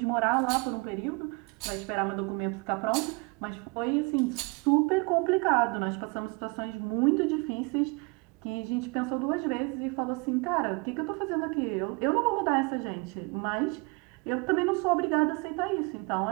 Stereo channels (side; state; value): left; quieter; 29.7 dB